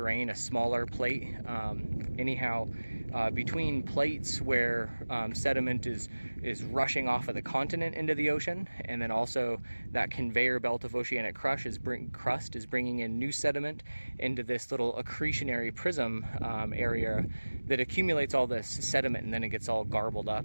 a smaller plate. Anyhow, between plates where sediment is rushing off of the continent into the ocean, and then also that conveyor belt of oceanic crust is bringing in new sediment into this little accretionary prism area that accumulates all this sediment, and then it gets all garbled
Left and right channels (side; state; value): both; inverted; correlation -1.00